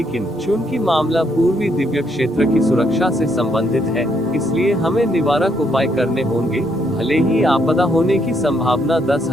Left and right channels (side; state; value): both; normal; correlation 0.73